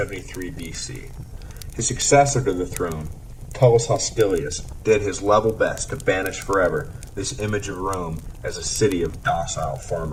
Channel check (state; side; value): identical; both; correlation 1.00